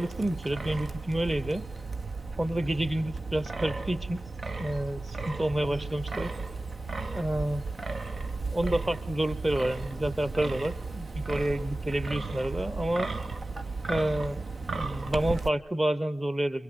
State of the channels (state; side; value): normal; both; correlation 0.96